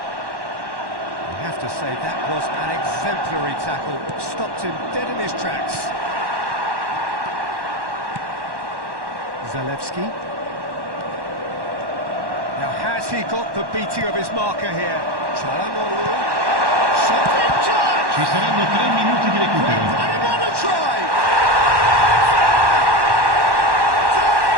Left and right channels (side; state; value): left; late; 1.1 ms